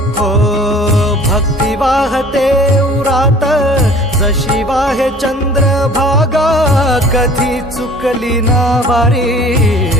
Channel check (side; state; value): both; normal; correlation 0.49